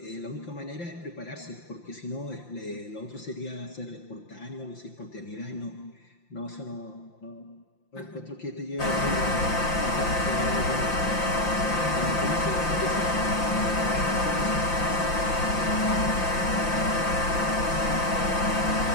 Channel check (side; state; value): right; late; 5.8 ms